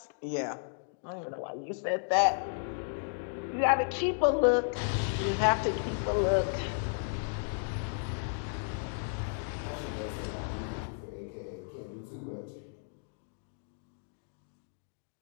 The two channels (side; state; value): right; silent; digital silence